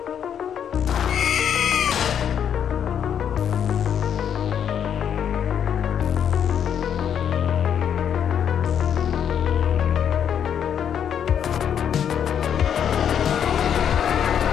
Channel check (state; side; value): quieter; right; 8.7 dB